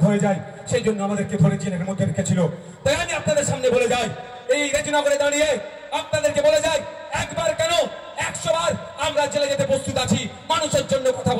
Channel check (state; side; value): identical; both; correlation 1.00